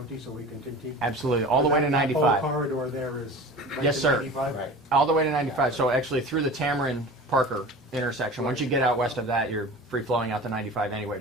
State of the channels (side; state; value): both; normal; correlation 0.37